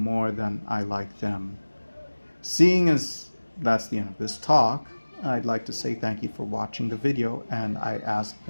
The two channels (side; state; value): both; inverted; correlation -1.00